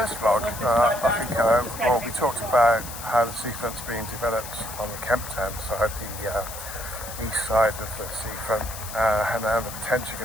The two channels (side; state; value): left; noise; hiss, 11 dB below the sound